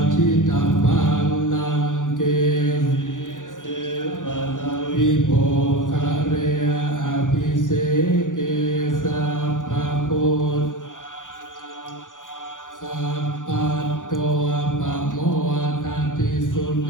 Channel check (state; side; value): late; right; 0.87 ms